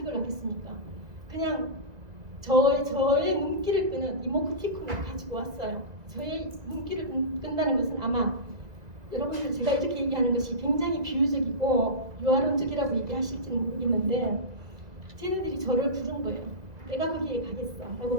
하겠습니까? 그냥 저의 눈길을 끄는 이모티콘을 가지고 왔어요. 저의 눈길을 끈다는 것은 아마 여러분들 제가 이렇게 얘기하는 것이 굉장히 비유적이고 유아론적이라고 얘기하실지는 모르겠는데 쟤네들이 저를 부른 거예요. 내가 거기에 가겠어 라고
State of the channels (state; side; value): late; left; 2.0 ms